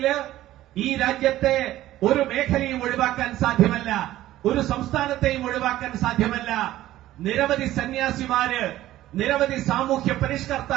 ഈ രാജ്യത്തെ ഒരു മേഖലയും ഒഴിവാക്കാൻ സാധ്യമല്ല, ഒരു സംസ്ഥാനത്തെയും ഒഴിവാക്കാൻ സാധ്യമല്ല. നിരവധി സന്യാസിമാര്, നിരവധി സാമൂഹ്യ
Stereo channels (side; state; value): left; quieter; 14.6 dB